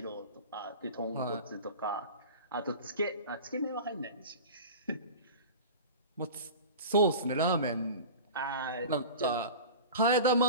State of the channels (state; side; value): inverted; both; correlation -0.35